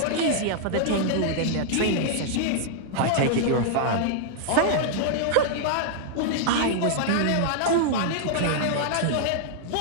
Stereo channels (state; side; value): different; both; correlation -0.01